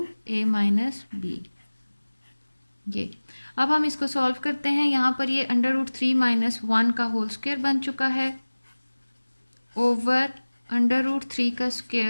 a minus बी। ये अब हम इसको सॉल्व करते हैं, यहाँ पर ये √3 माइनस 1 का होल स्क्वायर बन चुका है, ओवर √3 का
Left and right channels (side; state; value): both; inverted; correlation -1.00